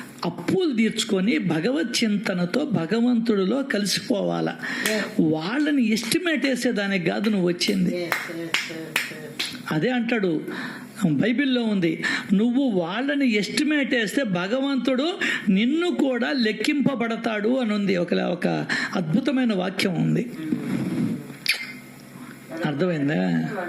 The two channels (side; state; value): both; identical; correlation 1.00